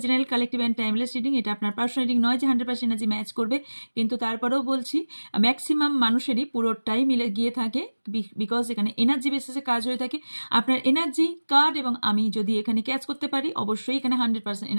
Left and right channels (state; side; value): inverted; both; correlation -1.00